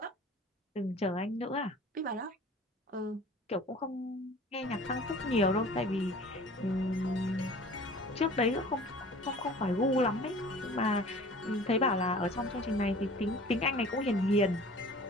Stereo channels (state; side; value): normal; both; correlation 0.45